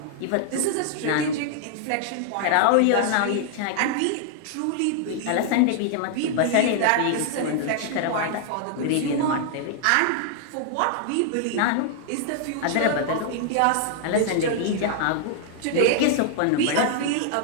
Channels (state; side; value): different; both; correlation 0.00